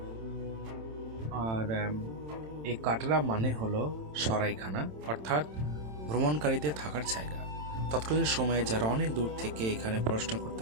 আর এই কাটরা মানে হলো সরাইখানা, অর্থাৎ ভ্রমণকারীদের থাকার জায়গা। তৎকালীন সময়ে যারা অনেক দূর থেকে এখানে পড়াশোনা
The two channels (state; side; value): late; left; 27 ms